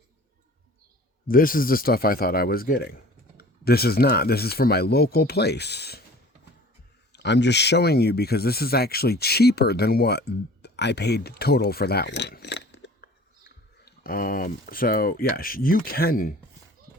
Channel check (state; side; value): normal; both; correlation 0.46